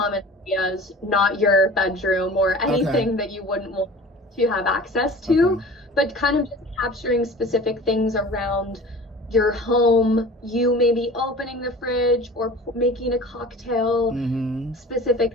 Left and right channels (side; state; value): both; normal; correlation 0.41